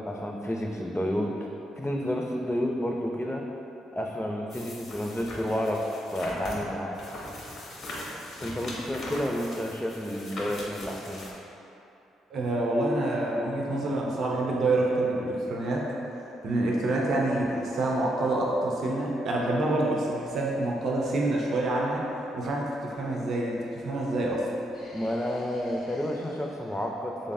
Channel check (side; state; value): both; normal; correlation 0.79